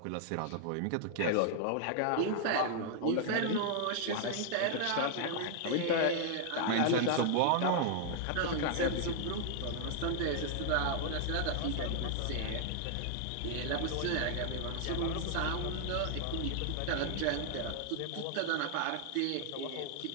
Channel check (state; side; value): different; both; correlation 0.00